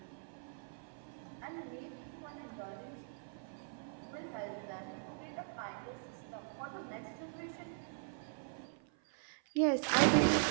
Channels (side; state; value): left; silent; 51 dB below the other